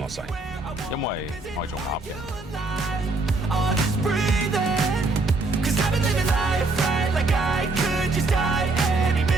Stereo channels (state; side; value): quieter; left; 3.4 dB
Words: 使，因為我係做鴨嘅。